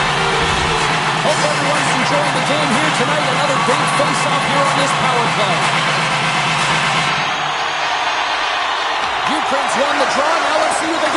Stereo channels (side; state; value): both; identical; correlation 1.00